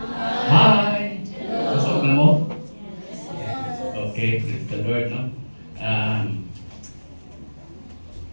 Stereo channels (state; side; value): inverted; both; correlation -1.00